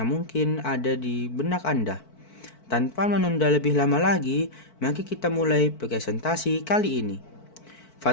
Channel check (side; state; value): right; late; 4.5 ms